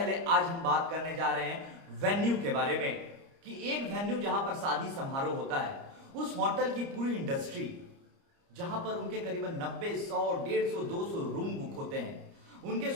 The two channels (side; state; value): left; late; 29 ms